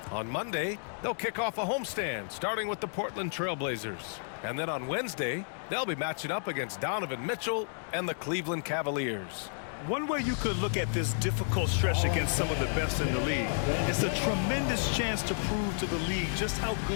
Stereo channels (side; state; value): right; silent; digital silence